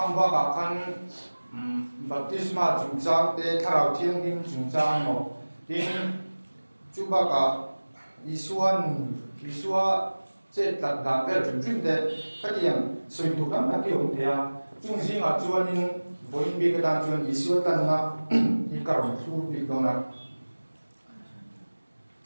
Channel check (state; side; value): inverted; both; correlation -1.00